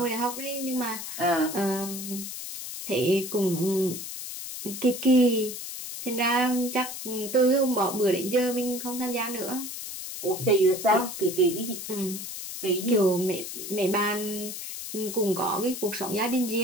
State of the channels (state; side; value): noise; left; hiss, 8 dB below the sound